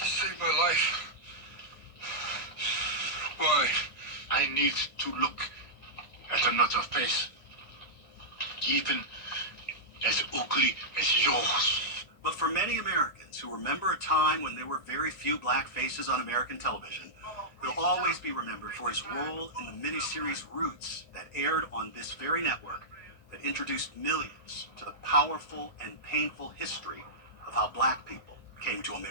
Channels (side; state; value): right; late; 1.7 ms